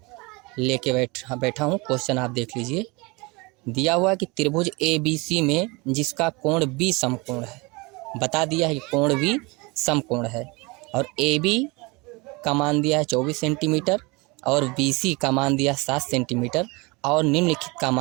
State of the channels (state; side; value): quieter; left; 26.3 dB